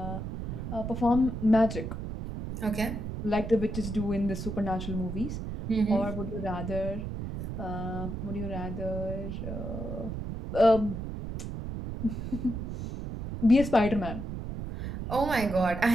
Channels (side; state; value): right; noise; rumble, 6 dB below the sound